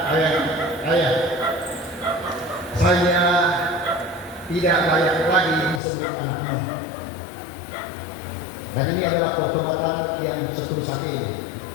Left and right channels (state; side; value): drops out; right; at 5.8 s